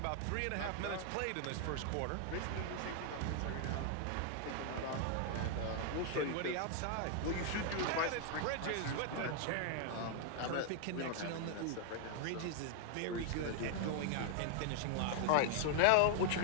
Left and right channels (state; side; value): different; both; correlation 0.00